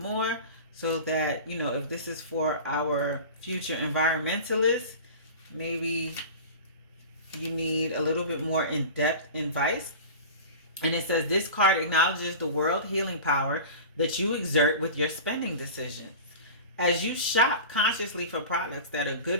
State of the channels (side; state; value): both; inverted; correlation -0.34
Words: so that, you know, if this is for our future environmentalists, maybe you need a little bit more in-depth advice. And it says this card acknowledges the world healing power that you exert with your spending decisions. As you shop consciously for products that are